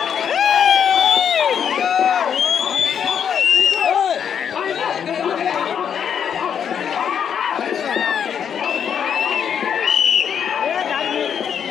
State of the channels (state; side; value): quieter; right; 8.0 dB